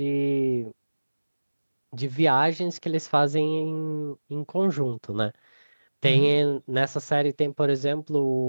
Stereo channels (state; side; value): inverted; both; correlation -1.00